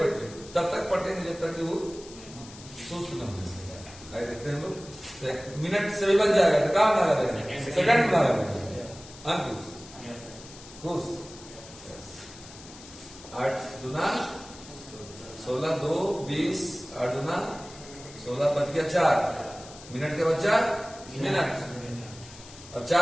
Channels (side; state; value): left; noise; hiss, 18 dB below the sound